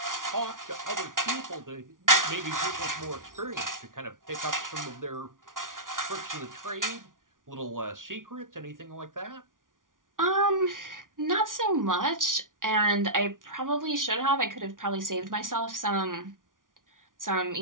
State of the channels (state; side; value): late; left; 0.89 ms